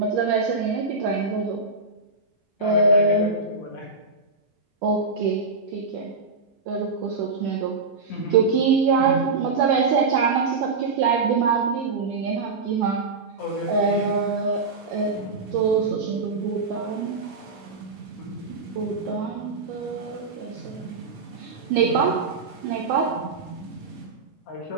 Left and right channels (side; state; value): left; quieter; 4.1 dB